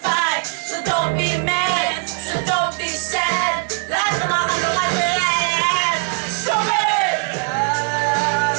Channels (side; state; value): left; quieter; 39.6 dB